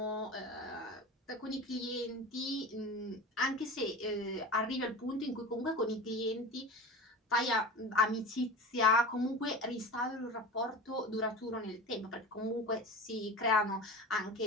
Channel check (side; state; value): both; normal; correlation 0.33